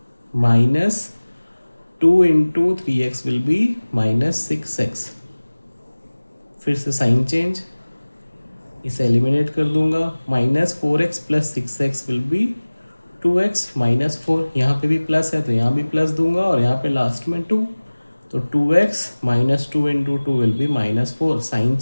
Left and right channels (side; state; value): both; inverted; correlation -1.00